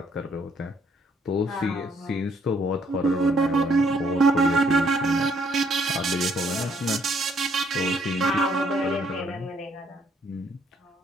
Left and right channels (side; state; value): both; normal; correlation 0.67